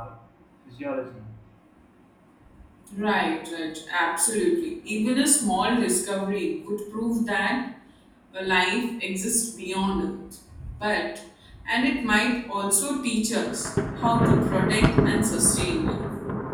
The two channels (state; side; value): identical; both; correlation 1.00